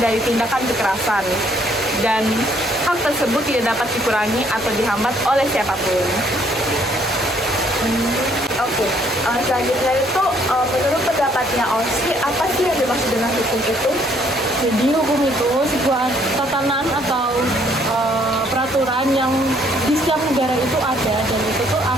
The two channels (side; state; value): both; normal; correlation 0.65